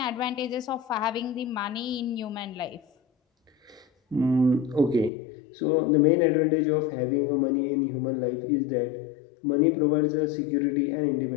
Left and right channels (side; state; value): right; drops out; at 5.1 s